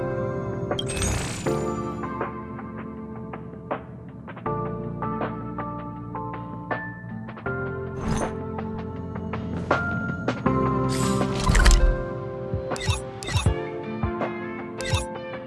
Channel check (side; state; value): both; identical; correlation 1.00